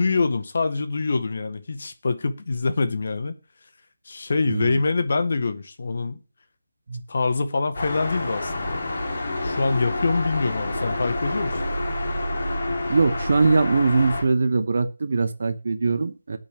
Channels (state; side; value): inverted; both; correlation -0.90